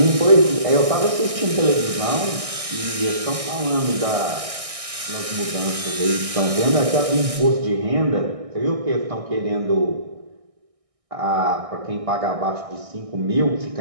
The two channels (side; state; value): left; late; 1.6 ms